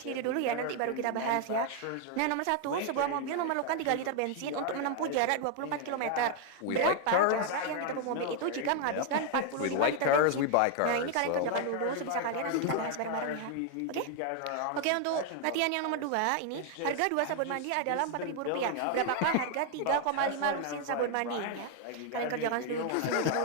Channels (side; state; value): both; different; correlation 0.00